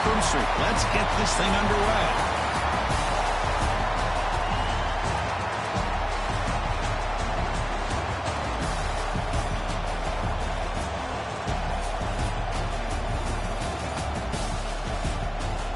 Herbstreit. Let's get this thing underway.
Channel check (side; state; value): both; identical; correlation 1.00